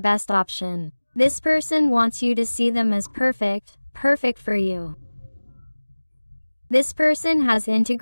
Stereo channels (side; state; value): both; inverted; correlation -1.00